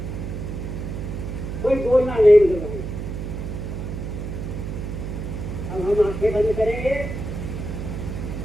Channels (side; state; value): right; noise; hum, 5 dB below the sound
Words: कोई बोलना नहीं मुझे भाई। अब हम आंखें बंद करेंगे।